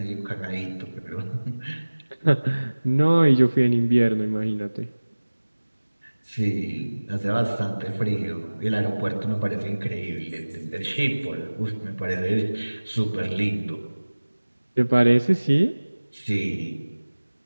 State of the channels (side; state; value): both; inverted; correlation -1.00